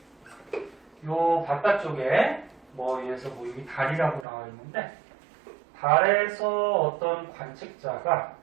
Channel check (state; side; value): drops out; left; at 4.2 s